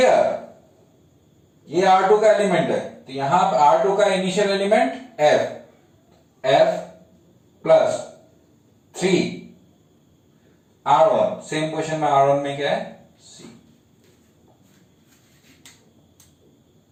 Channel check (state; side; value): identical; both; correlation 1.00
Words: ये R2 का एलिमेंट है, तो यहां पर R2 का initial element F plus 3 R1, same question में R1 में क्या है, C.